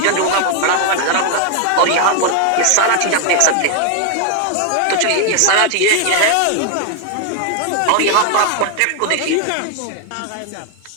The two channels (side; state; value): both; different; correlation 0.00